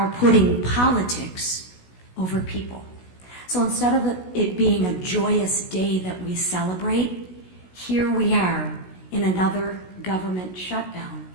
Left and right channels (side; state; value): right; late; 16 ms